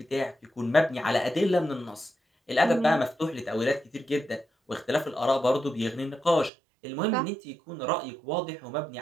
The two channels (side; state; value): left; drops out; at 6.5 s